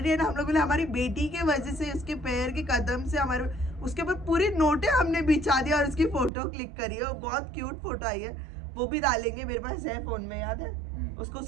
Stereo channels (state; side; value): drops out; left; at 6.3 s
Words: है ना, हम लोग बोले हमारी बेटी के वजह से, उसके पैर के कदम से हमारे, उसके ऊपर पूरी नोटें हमने बिछा दिया और उसकी फोटो क्लिक करी है, बहुत क्यूट फोटो आई है, वो भी डालेंगे, मेरे पास है फोन में, याद है उसको